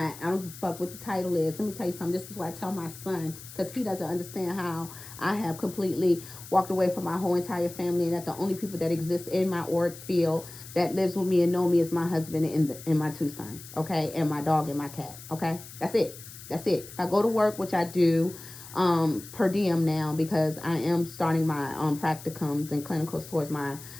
I don't give a fuck what the title is. Let me tell you something. This is what I tell my son, because he doesn't understand how I have completely walked away from my whole entire family, and that the only people that exist in my auric field that lives with me and know me is my husband and my 2 sons, okay? And my dog and my cat, okay? That's it. That's it. If I go to work, which I do, per diem now, because I am starting my practicums and clinicals towards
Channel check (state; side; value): noise; left; hiss, 15 dB below the sound